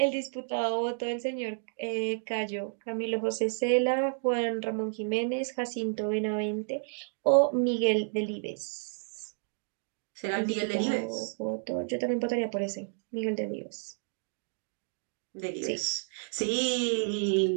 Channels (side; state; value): left; silent; digital silence